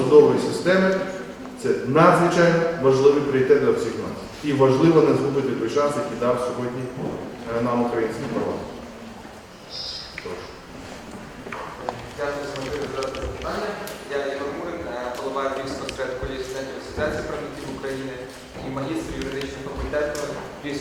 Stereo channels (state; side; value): identical; both; correlation 1.00